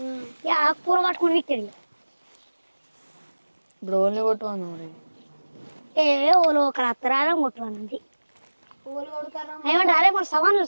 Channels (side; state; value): both; inverted; correlation -1.00